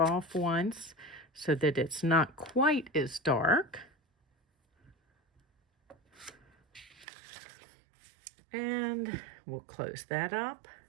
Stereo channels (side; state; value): left; drops out; at 7.1 s